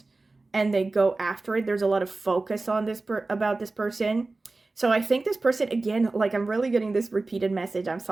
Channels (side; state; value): left; quieter; 3.4 dB